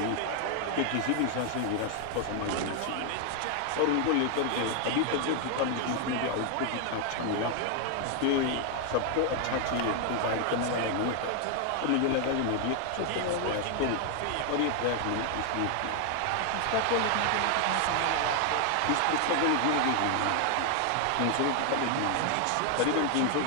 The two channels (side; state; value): both; different; correlation 0.00